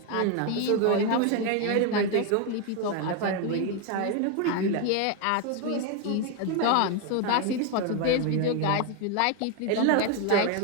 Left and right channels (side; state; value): both; different; correlation 0.01